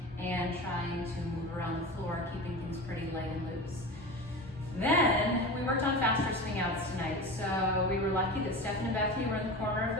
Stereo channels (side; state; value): both; normal; correlation 0.29